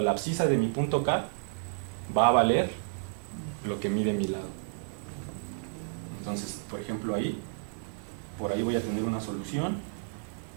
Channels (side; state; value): left; silent; 57 dB below the other